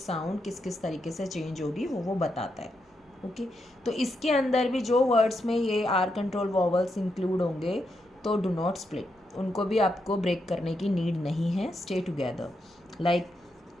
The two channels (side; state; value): both; normal; correlation 0.82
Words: किस किस तरीके से चेंज होगी वो बताता है, ओके। तो इसके अंदर भी जो वर्ड्स में ये आर कंट्रोल वॉवल्स इंक्लूड होंगे तो डू नॉट स्प्लिट, उनको भी आपको ब्रेक करने की नीड नहीं है, स्टे टुगेदर। लाइक